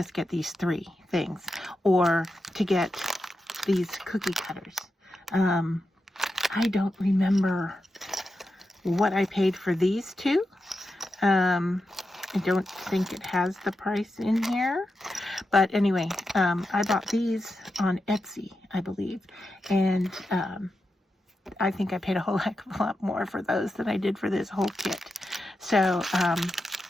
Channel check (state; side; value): normal; both; correlation 0.89